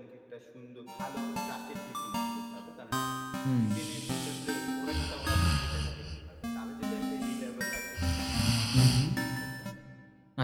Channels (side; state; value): both; identical; correlation 1.00